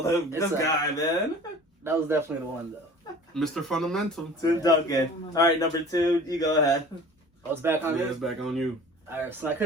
a- guy, man. That was definitely the one though. Mr. Fundamental. Tim Duncan. All right, number 2, you go ahead. I was back on Yeah, this. it's back on you. Alright, so I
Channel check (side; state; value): both; normal; correlation 0.44